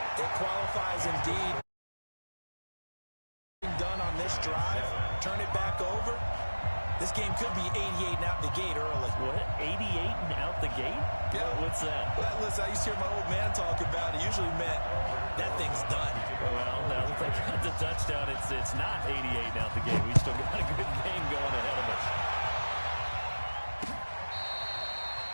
It qualifies indeed. Done on this drive, turn it back over. This game could be 88 and out the gate early. What? 88 and out the gate? Yeah. What's that? Well, listen, I used to hear my old man talk about it. Usually meant that thing's done. Well, now that they got the touchdown, it's not 88 and out the gate. We still got a good game going ahead of us.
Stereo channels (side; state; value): both; inverted; correlation -1.00